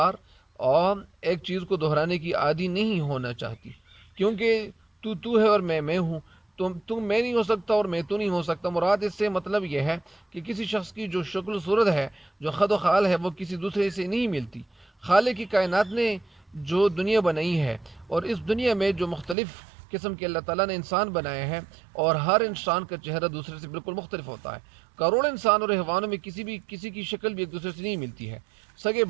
اور ایک چیز کو دہرانے کی عادی نہیں ہونا چاہتی، کیونکہ تو ہے اور میں ہوں. تم میں نہیں ہو سکتا اور میں تو نہیں ہو سکتا. مراد اس سے مطلب یہ ہے کہ کسی شخص کی جو شکل و صورت ہے، جو خد و خال ہے، وہ کسی دوسرے سے نہیں ملتی. خالق کی کائنات نے جو دنیا بنائی ہے، اور اس دنیا میں جو مختلف قسم کے اللہ تعالیٰ نے انسان بنائے ہیں، اور ہر انسان کا چہرہ دوسرے سے بالکل مختلف ہوتا ہے. کروڑ انسان اور حیوانوں میں کسی کی شکل بھی ایک دوسرے سے نہیں ملتی ہے. سگے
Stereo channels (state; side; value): drops out; left; at 19.4 s